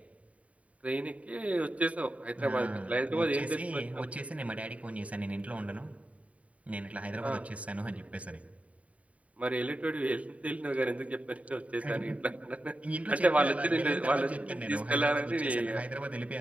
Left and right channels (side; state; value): left; late; 0.067 ms